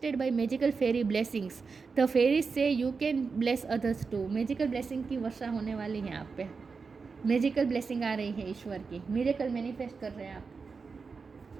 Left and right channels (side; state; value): left; quieter; 4.9 dB